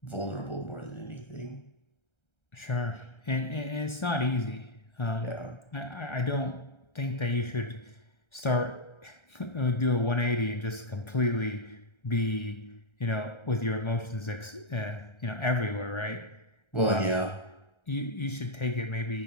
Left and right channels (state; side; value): late; right; 1.3 ms